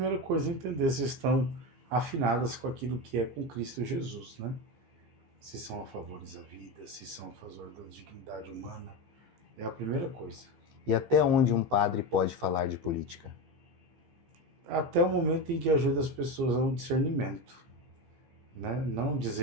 coisa, entender se estão afinadas com aquilo que é com Cristo Jesus, né? Se são a favores da vida, se são a favor da dignidade humana, é a primeira coisa. E até onde um padre pode falar de política? Até o momento em que ajuda as pessoas ao discernimento, né? Não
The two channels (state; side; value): late; left; 15 ms